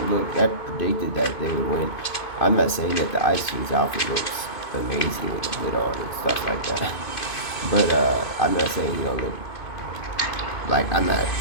Look, I predicted that they would win. I'm not saying that the Ice King's outfit looks amazing with the hood on and stuff like that. But I'm not saying he don't look like I'm not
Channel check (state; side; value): late; right; 2.5 ms